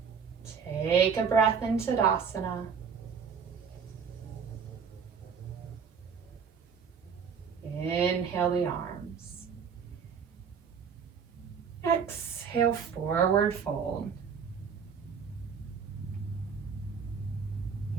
Take a breath in Tadasana. Inhale the arms. Exhale, forward fold.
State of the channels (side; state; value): left; quieter; 6.5 dB